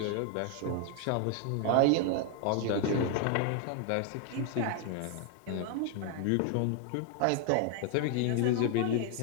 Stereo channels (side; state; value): both; different; correlation 0.01